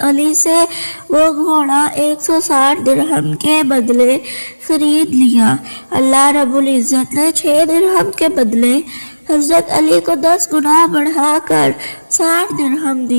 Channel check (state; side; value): inverted; both; correlation -1.00